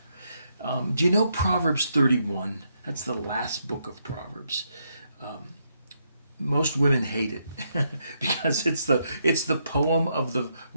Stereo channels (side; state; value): both; inverted; correlation -0.78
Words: Do you know Proverbs 31? That's the last book of Proverbs. Most women hate it because it's the poem of the